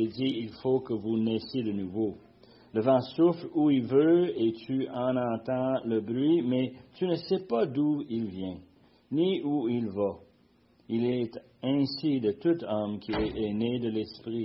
il faut que vous naissiez de nouveau. Le vent souffle où il veut et tu en entends le bruit, mais tu ne sais pas d'où il vient, ni où il va. Il est ainsi de tout homme qui est né de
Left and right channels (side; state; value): both; identical; correlation 1.00